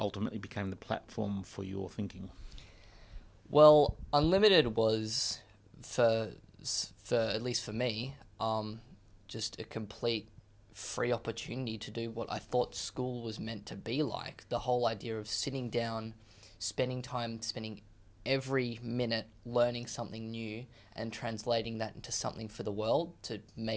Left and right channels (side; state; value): both; identical; correlation 1.00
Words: became the platform for your thinking? Well, Unlimited was, for at least for me, just a complete free opportunity to do what I thought school was meant to be like. The whole idea of sitting down, spending time, spending every minute learning something new and translating that into something for the world to